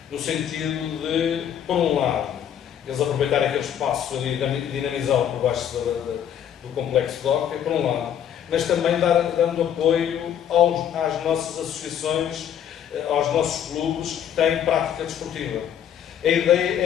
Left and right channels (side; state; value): right; quieter; 9.4 dB